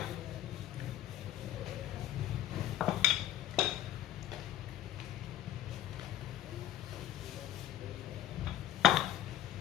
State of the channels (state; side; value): quieter; right; 12.9 dB